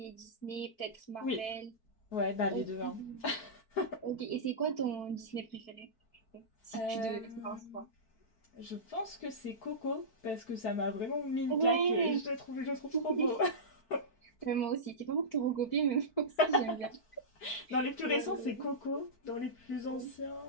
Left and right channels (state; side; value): late; right; 4.6 ms